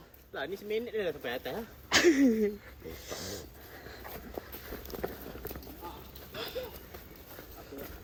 Lah ni seminit dia dah sampai atas lah.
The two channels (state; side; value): identical; both; correlation 1.00